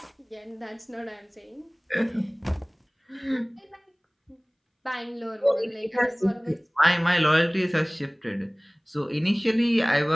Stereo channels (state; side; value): identical; both; correlation 1.00